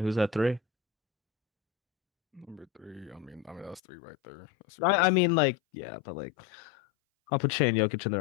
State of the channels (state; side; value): drops out; right; at 3.8 s